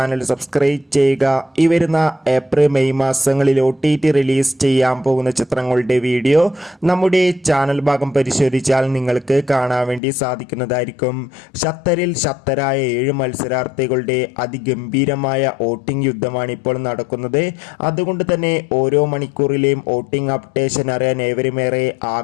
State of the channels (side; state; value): right; drops out; at 10.0 s